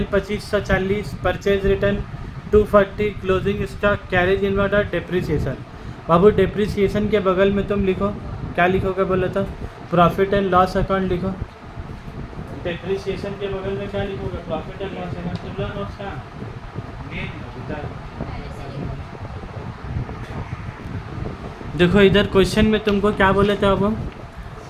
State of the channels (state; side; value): identical; both; correlation 1.00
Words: 2540, purchase return 240, closing stock, carriage inward और डेप्रिसिएशन। बाबू डेप्रिसिएशन के बगल में तुम लिखो, क्या लिखोगे बोला था, प्रॉफिट एंड लॉस अकाउंट लिखो। डेप्रिसिएशन के बगल में क्या लिखोगे, प्रॉफिट एंड लॉस अकाउंट। तुम लोग नोट्स कहाँ देखो, इधर क्वेश्चन में तुमको क्या बोले थे अब हम,